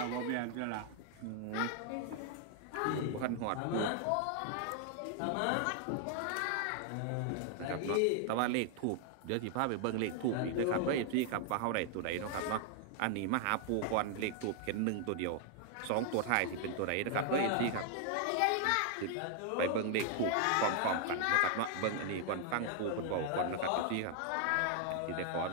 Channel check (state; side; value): different; both; correlation 0.00